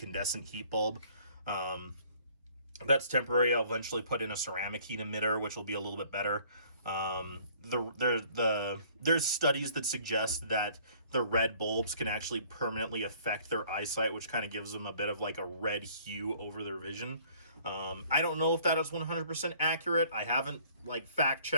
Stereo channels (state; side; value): inverted; both; correlation -0.57